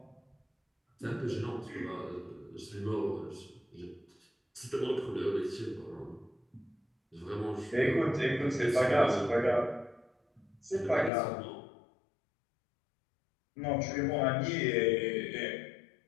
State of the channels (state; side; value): drops out; right; at 11.1 s